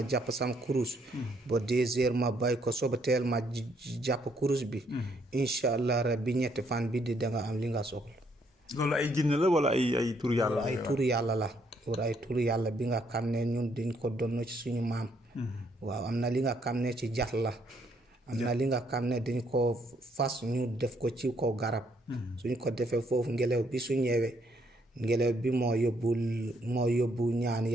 jàpp sam kurus. ba 2 heures ma bay ko soba teel ma jàpp kurus bi. incha allah rabbi ñetti fan bi di danga am li nga soxla. loolu ay jinne la wala ay tur yàlla la. ay tur yàlla la. pour ay tur yàlla bi nga xam ne ñun dañ ko donn ci suñu maam. waaw am na li nga xam ne ci jat la. am na li nga xam ne dañ ko fas ñu def ko ci kaw garab. suñ ko defee foofu ngelaw bi su ñëwee ngelaw bi moo yóbbu ñaan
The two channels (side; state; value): both; normal; correlation 0.70